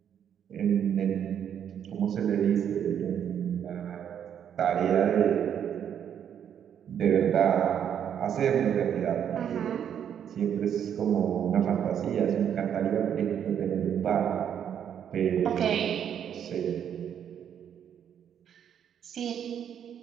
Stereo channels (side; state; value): left; quieter; 8.9 dB